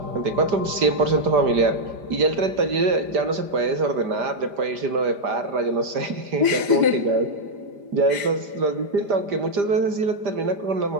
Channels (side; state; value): left; late; 5.0 ms